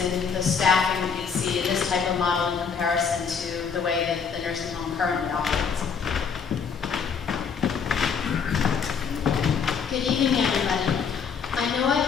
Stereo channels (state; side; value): quieter; right; 6.3 dB